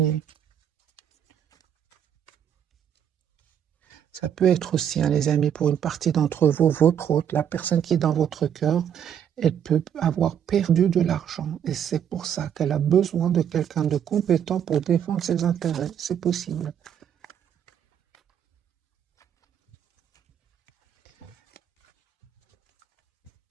Ça peut être aussi, hein, les amis, pour une partie d'entre vous, votre autre, la personne qui est dans votre cœur, elle peut avoir perdu de l'argent. Et c'est pour ça qu'elle a besoin de quelqu'un de compétent pour défendre ses intérêts. C'est possible.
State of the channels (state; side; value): quieter; left; 9.0 dB